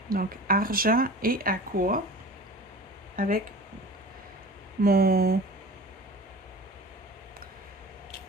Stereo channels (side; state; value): both; normal; correlation 0.38